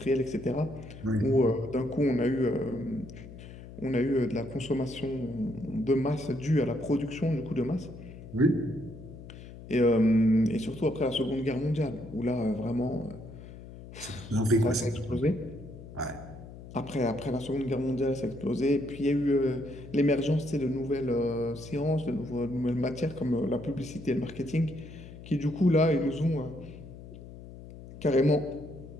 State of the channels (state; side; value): noise; left; hum, 15 dB below the sound